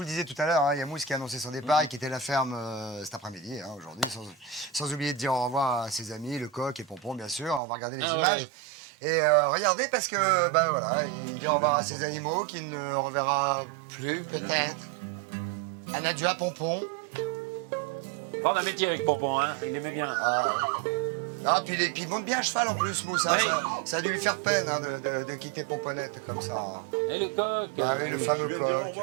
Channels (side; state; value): left; drops out; at 7.6 s